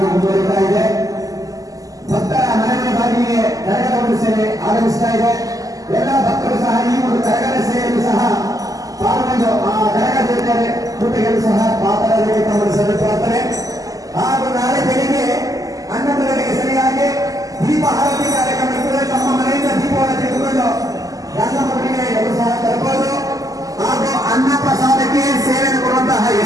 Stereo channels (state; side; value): late; left; 0.17 ms